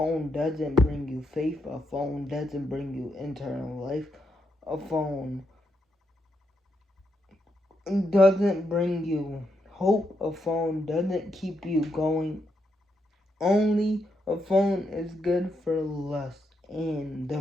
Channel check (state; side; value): normal; both; correlation 0.81